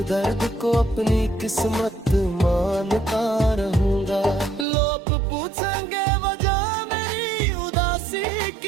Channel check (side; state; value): left; drops out; at 4.7 s